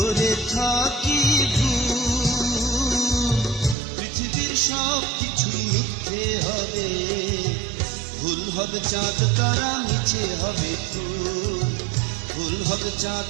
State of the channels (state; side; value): drops out; left; at 3.8 s